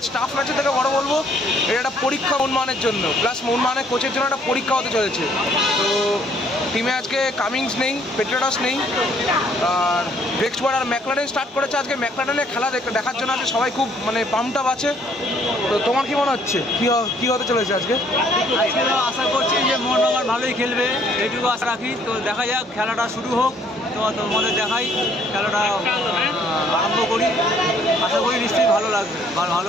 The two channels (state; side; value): normal; both; correlation 0.63